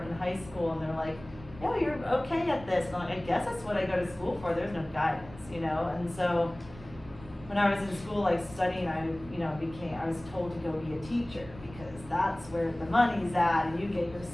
in high school and they're like, yeah, you're okay at this. And I'm like, I guess that's what I go to school for. There's no guidance, you know? And so when I was in school, like studying, I was told to go be a teacher because that's where the money's at and you get your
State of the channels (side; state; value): right; noise; rumble, 18 dB below the sound